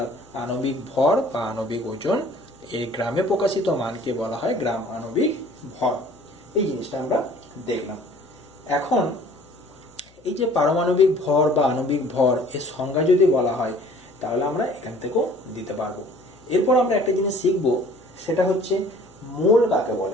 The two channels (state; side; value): noise; left; hum, 29 dB below the sound